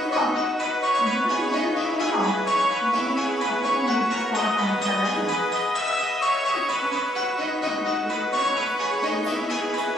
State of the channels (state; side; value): normal; both; correlation 0.73